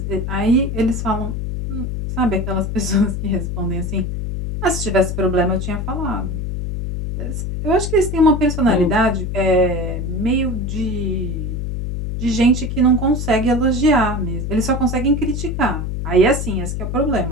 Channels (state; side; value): noise; left; hum, 3 dB below the sound